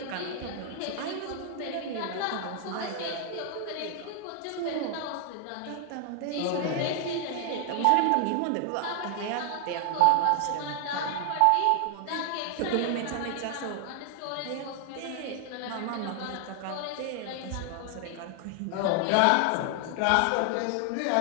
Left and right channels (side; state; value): both; different; correlation 0.00